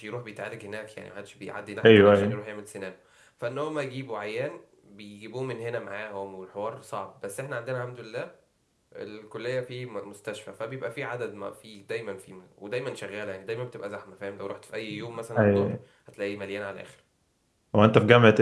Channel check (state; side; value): identical; both; correlation 1.00